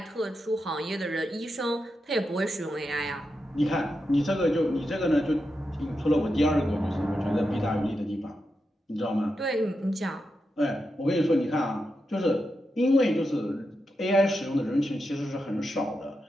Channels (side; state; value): both; normal; correlation 0.87